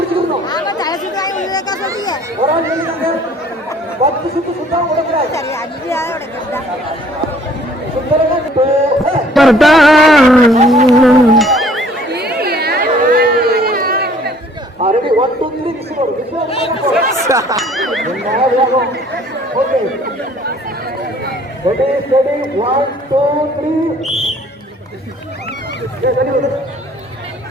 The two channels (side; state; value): both; normal; correlation 0.57